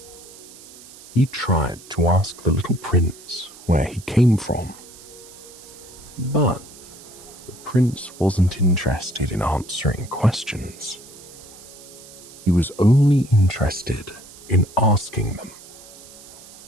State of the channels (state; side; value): noise; right; hiss, 19 dB below the sound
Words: He tried to ask the little prince where he came from, but the prince wasn't interested in answering questions. He was only interested in asking them.